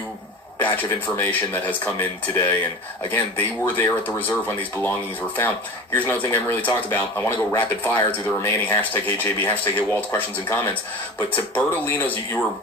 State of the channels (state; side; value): normal; both; correlation 0.33